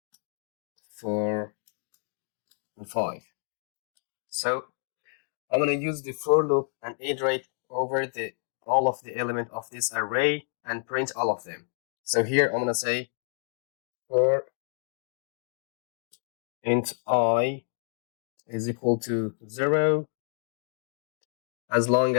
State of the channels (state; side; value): silent; right; digital silence